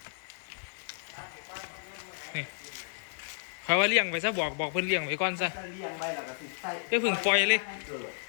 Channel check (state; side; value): silent; right; digital silence